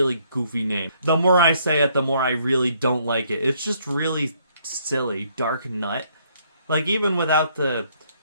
goofy name. The more I say it, the more I really don't like it. It's just really silly. Dark Nut. Like, even without the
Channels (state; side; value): inverted; both; correlation -0.67